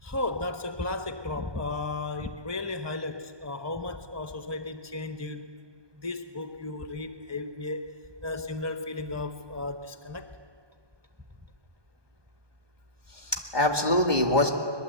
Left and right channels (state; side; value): late; left; 1.2 ms